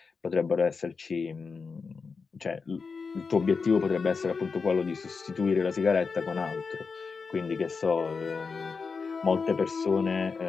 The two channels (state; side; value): quieter; right; 4.9 dB